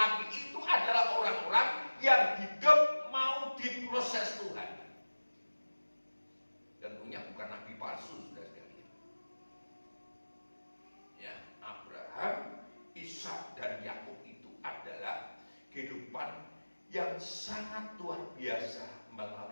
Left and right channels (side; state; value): both; inverted; correlation -1.00